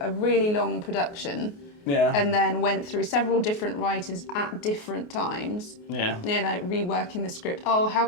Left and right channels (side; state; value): right; late; 28 ms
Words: a really long production. Yeah. And then went through several different writers at different times. Yeah. Reworking the script. Oh, how